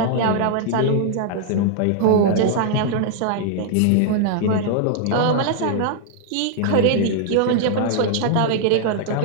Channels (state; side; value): different; both; correlation 0.00